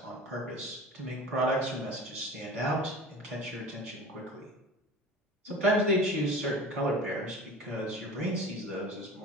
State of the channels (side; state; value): both; normal; correlation 0.38